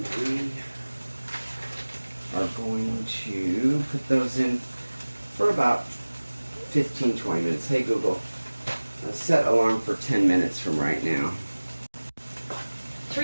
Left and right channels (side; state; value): both; inverted; correlation -1.00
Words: we are going to put those in for about 15-20 minutes. Hey Google, set alarm for 10 minutes from right now.